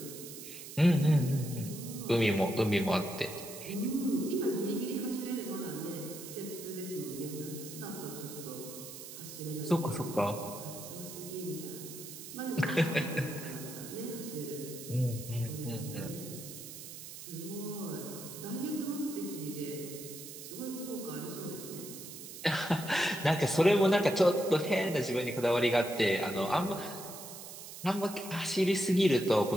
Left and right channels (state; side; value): noise; right; hiss, 12 dB below the sound